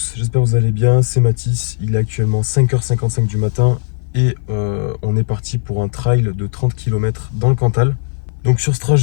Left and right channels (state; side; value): silent; right; 56 dB below the other